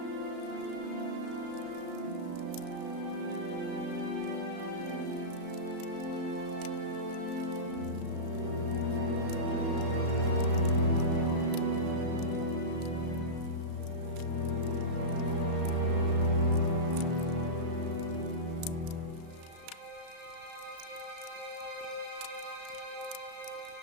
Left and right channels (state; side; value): late; left; 34 ms